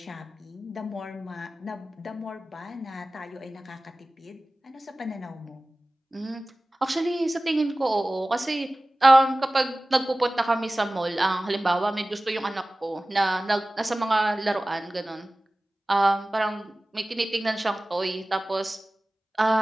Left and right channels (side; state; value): both; normal; correlation 0.97